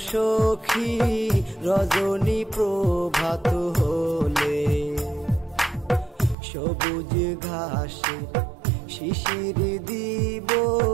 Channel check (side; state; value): left; drops out; at 6.4 s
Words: সখী, রজনী প্রভাত হলে। সবুজ ঘাসে শিশির দিব